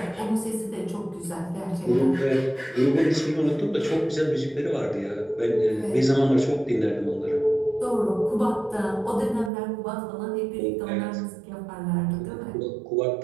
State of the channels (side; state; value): left; drops out; at 9.5 s